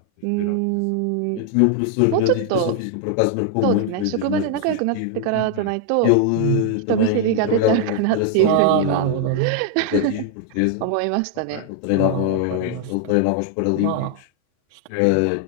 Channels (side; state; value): both; different; correlation 0.00